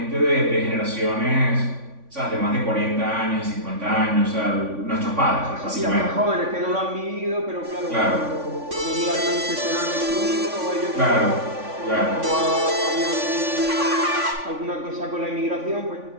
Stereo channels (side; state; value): left; late; 3.5 ms